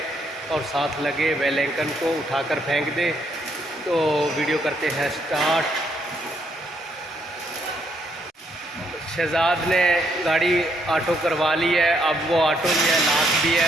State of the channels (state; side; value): normal; both; correlation 0.73